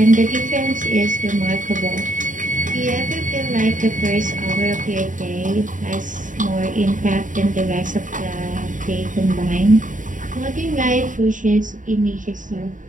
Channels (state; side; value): late; left; 0.37 ms